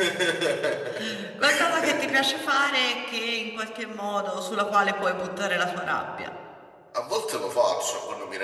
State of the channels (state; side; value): identical; both; correlation 1.00